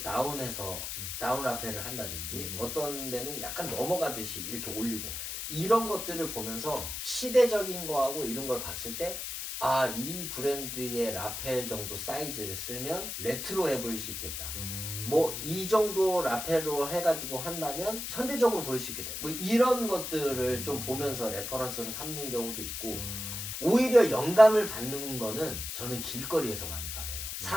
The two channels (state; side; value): noise; left; hiss, 5 dB below the sound